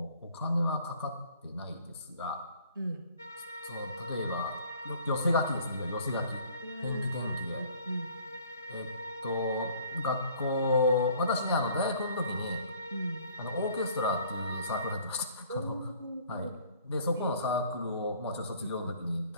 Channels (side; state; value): both; inverted; correlation -0.55